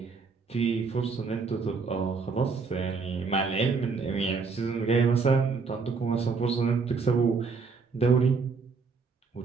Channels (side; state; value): left; quieter; 4.8 dB